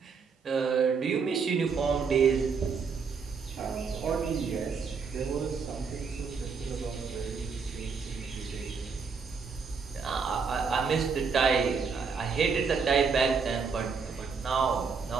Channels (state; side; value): quieter; left; 5.5 dB